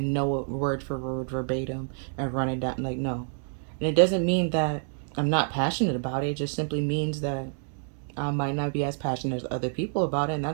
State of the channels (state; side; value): silent; left; digital silence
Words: know it word for word verbatim and run it down. Like, no, and it doesn't mean that I'm not passionate about it. It just simply means that I might not be as passionate as other people about it, and